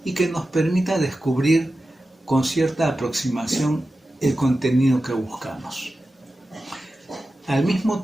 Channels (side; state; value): both; normal; correlation 0.93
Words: y que nos permita descubrir con cierta aproximación el contenido que buscamos. Al mismo